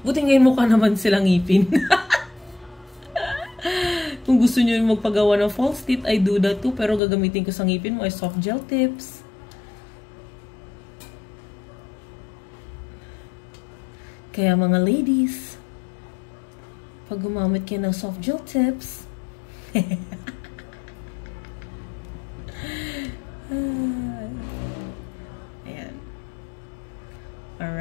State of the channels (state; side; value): drops out; right; at 7.0 s